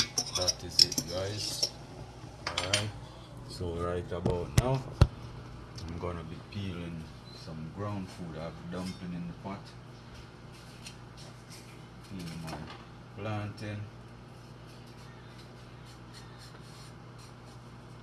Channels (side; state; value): both; identical; correlation 1.00